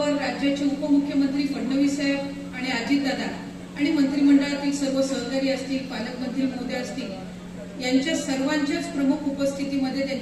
राज्याचे उपमुख्यमंत्री फडणवीस साहेब आणि अजितदादा आणि मंत्रिमंडळातील सर्व सहकारी असतील, पालकमंत्री महोदय असतील, यांच्या सर्वांच्याच प्रमुख उपस्थितीमध्ये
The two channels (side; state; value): both; identical; correlation 1.00